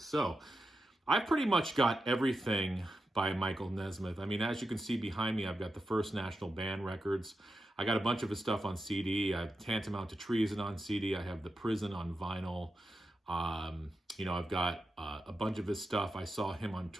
So I've pretty much got everything by Michael Nesmith. I mean, as you can see behind me, I've got the First National Band records. I got a bunch of his stuff on CD. I have Tantamount to Treason on CD. I have The Prison on vinyl. I've got a bunch of his stuff. I saw him on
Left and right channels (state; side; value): normal; both; correlation 0.88